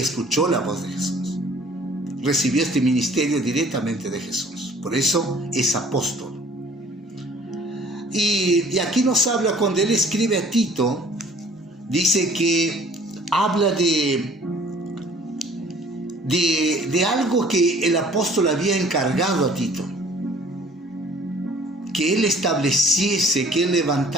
la voz de Jesús. Recibió este ministerio directamente de Jesús. Por eso es apóstol. Y aquí nos habla, cuando él escribe a Tito, dice que habla de algo que el apóstol había encargado a Tito. Que él estableciese, que él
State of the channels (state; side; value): normal; both; correlation 0.53